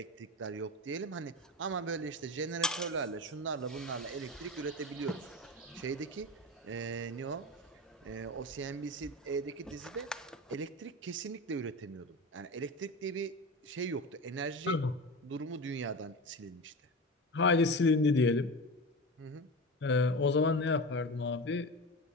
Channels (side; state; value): both; normal; correlation 0.26